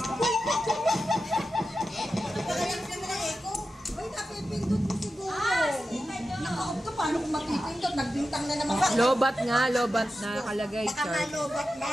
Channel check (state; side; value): normal; both; correlation 0.91